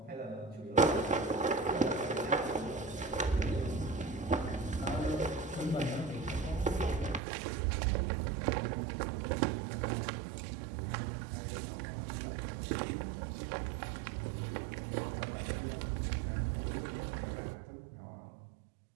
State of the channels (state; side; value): drops out; left; at 7.2 s